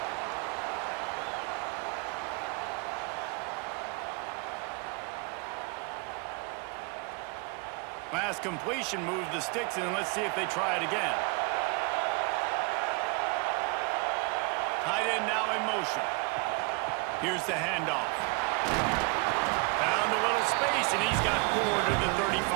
Pass completion moves the sticks, and let's see if they try it again. Tight end now in motion. Here's the handoff. Found a little space, and he's got 4 to the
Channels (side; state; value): left; quieter; 30.9 dB